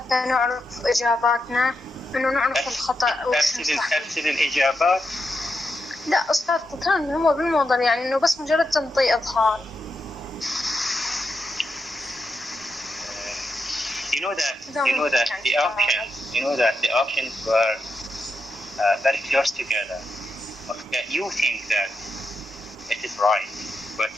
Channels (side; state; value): both; normal; correlation 0.85